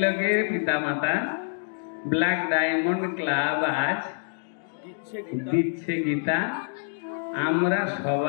পিতামাতা ব্ল্যাক ডায়মন্ড ক্লাব আজ দিচ্ছে গীতা। আমরা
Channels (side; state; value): right; silent; digital silence